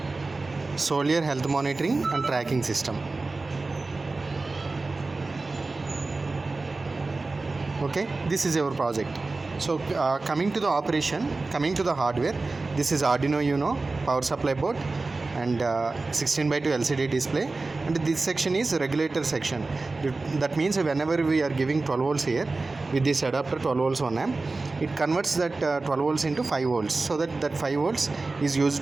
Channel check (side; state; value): left; quieter; 3.5 dB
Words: Soldier Health Monitoring and Tracking System. Okay, this is your project. So coming to the operation, coming to the hardware, this is Arduino Uno power supply board and 16:2 LCD display, and this section is regulator section. That means whenever we are giving 12 volts here with this adapter 12 volts on amp, it converts that 12 volts into 5 volts, so that 5 volts is